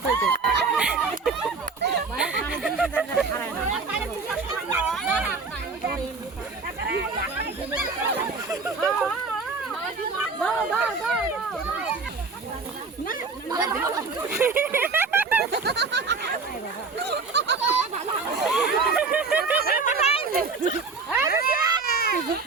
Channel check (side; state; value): left; quieter; 4.4 dB